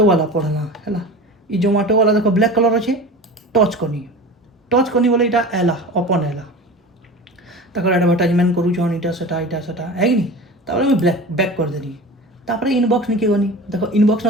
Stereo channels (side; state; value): both; normal; correlation 0.34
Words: वाला पढ़ला है इ जोमाटो वाला देख ब्लैक कलर अच्छे टच करनी बोले इटा एला ओपन एला तक एडवर्टाइजमेंट करूछन इटा सेटा है कि नहीं तापर मैं ब्लैक बैक कर देनी तापर इनबॉक्स निके गनी देखो इनबॉक्स